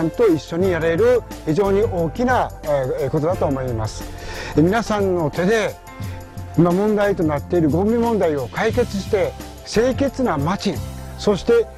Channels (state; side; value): identical; both; correlation 1.00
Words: んと一緒にやれる非常に大きなことだと思います。皆さんの手で今問題となっているゴミ問題を解決して清潔な街、そして